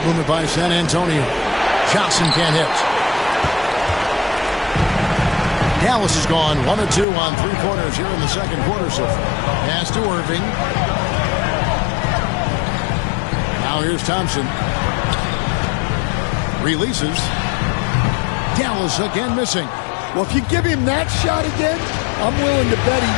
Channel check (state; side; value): drops out; right; at 7.1 s